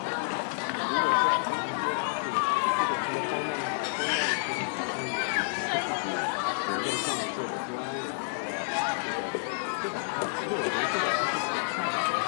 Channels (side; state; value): right; silent; digital silence